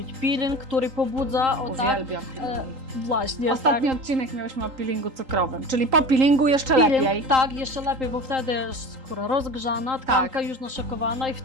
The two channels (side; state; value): left; late; 3.8 ms